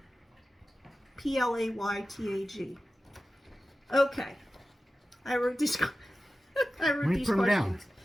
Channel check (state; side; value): normal; both; correlation 0.94